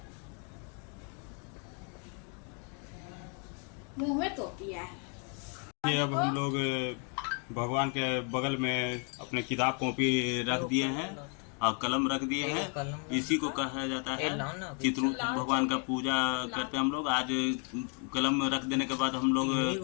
मुंह में तो पिया है। ये अब हम लोग भगवान के बगल में अपने किताब कॉपी रख दिए हैं और कलम रख दिए हैं। इसी को कहा जाता है चित्रगुप्त भगवान का पूजा करते हैं हम लोग। आज कलम रख देने के बाद हम लोग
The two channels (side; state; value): right; quieter; 39.4 dB